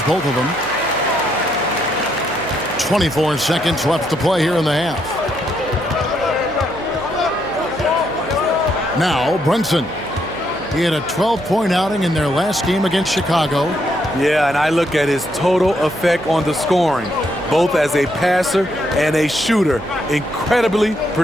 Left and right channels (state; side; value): noise; right; hum, 16 dB below the sound